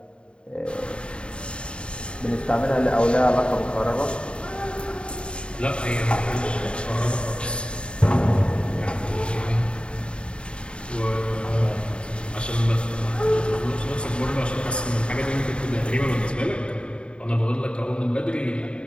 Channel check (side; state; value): right; late; 0.054 ms